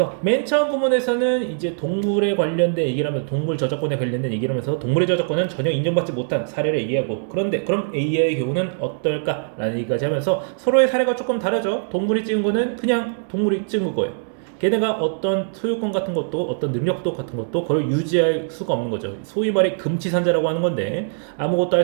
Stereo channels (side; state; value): left; silent; digital silence